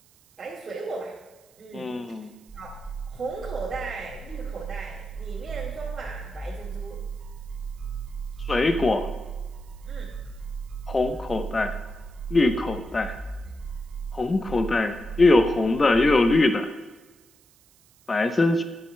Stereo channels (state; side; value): noise; right; hiss, 30 dB below the sound